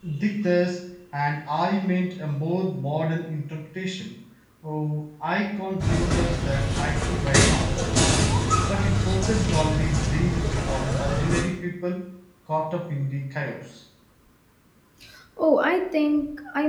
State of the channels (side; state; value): both; identical; correlation 1.00